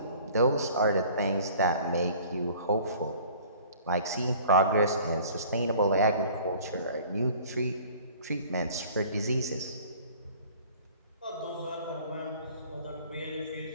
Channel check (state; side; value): inverted; both; correlation -0.49